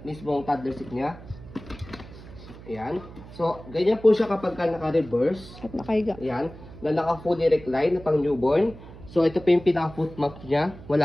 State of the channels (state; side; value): noise; right; hum, 17 dB below the sound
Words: toddler seat niya. Ayan. So, ganyan po siya kapag naka-reverse. At nakahiga. Ayan. Na naka-fully recline na pang newborn. So, ito po yung pinaka-foot mat niya.